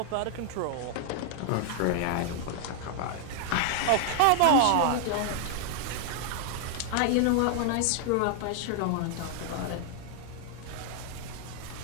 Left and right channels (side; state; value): both; different; correlation 0.00